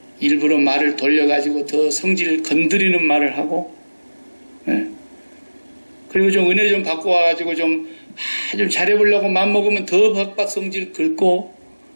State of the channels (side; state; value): both; inverted; correlation -1.00